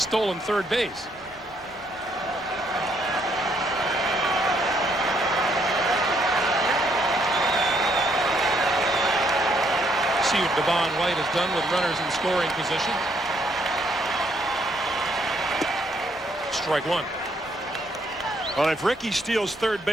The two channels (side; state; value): both; normal; correlation 0.71